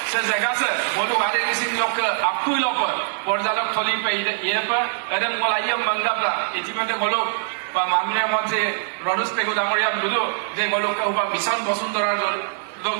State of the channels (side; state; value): left; silent; digital silence